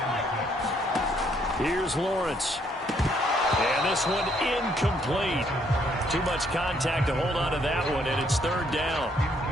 Here's Lawrence. And this one incomplete. Too much contact to hold on to that one, and it's 3rd down.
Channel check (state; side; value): normal; both; correlation 0.69